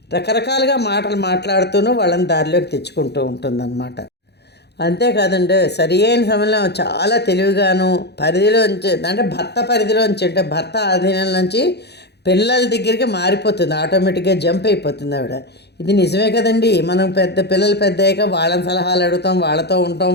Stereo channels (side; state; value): right; late; 0.48 ms